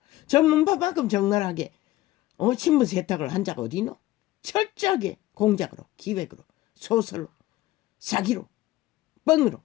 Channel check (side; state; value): right; quieter; 16.5 dB